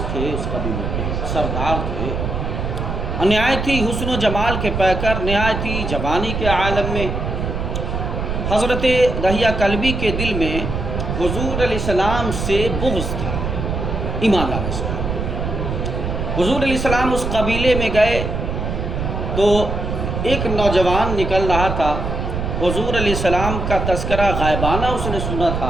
تھے، اس قبیلے کے سردار تھے، نہایتی حسن و جمال کے پیکر، نہایتی جوانی کے عالم میں حضرت دحیہ کلبی کے دل میں حضور علیہ السلام سے بغض تھا، ایمان لانے سے۔ حضور علیہ السلام اس قبیلے میں گئے تو ایک نوجوان نکل رہا تھا، حضور علیہ السلام کا تذکرہ غائبانہ اس نے سنا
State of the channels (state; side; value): noise; right; rumble, 3 dB below the sound